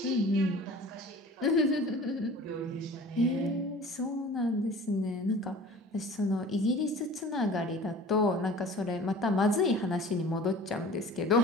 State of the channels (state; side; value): normal; both; correlation 0.43